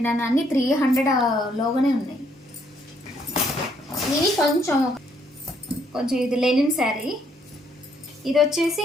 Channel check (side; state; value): both; normal; correlation 0.70